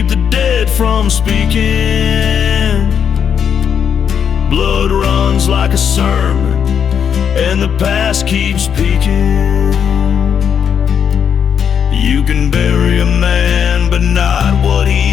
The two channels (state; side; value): quieter; right; 7.8 dB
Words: the dead from speaking. Blood runs like a sermon, and the past keeps peeking. You can bury a man, but not what